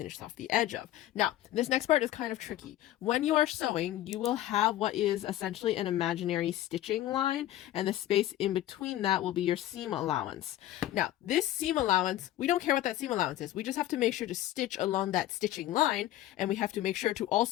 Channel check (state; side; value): quieter; right; 14.0 dB